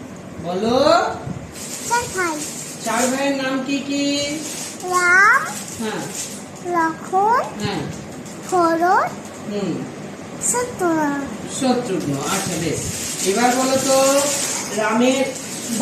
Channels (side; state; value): both; identical; correlation 1.00